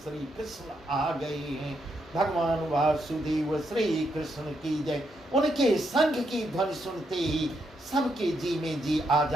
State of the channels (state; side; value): normal; both; correlation 0.79